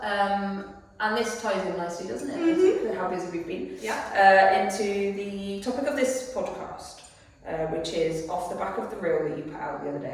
and this ties in nicely, doesn't it? With how busy we've been. Yeah. Into the topic of this podcast, which is off the back of the reel that you put out the other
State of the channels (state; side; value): identical; both; correlation 1.00